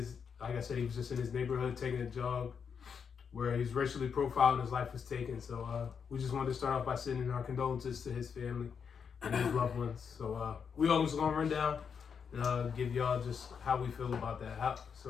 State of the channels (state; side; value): quieter; right; 6.6 dB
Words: like I said, he was just in his neighborhood taking a jog where he's racially profiled and his life was taken. So we just wanted to start off by sending our condolences to his family and his loved ones. So we always going to run down and give y'all just how we feel about that.